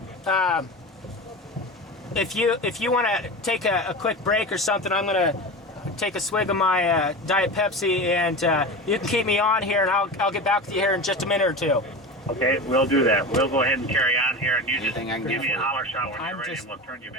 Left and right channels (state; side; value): normal; both; correlation 0.28